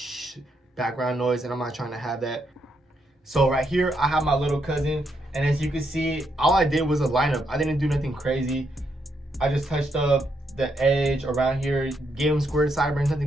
background noise, and I'm not trying to have that. So right here, I have my little cousin, and as you can see, all I did was a lineup. I didn't do nothing crazy. I just touched up the edge around here, gave him squared sideburns, nothing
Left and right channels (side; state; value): both; normal; correlation 0.78